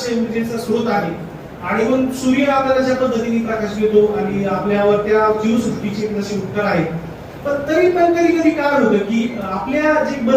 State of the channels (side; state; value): both; identical; correlation 1.00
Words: ऊर्जेचा स्रोत आहे आणि मग सूर्य आपल्याला ज्या पद्धतीने प्रकाश देतो आणि आपल्यावर त्या जीवसृष्टीचे जसे उपकार आहेत. पण तरी पण कधी काय होतं की आपल्या जे